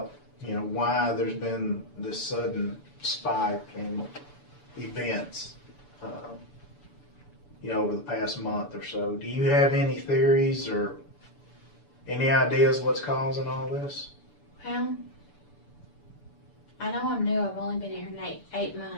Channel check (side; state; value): right; late; 6.9 ms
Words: why there's been this sudden spike in events, over the past month or so. Do you have any theories or any ideas what's causing all this? Well, I know I'm new. I've only been here 8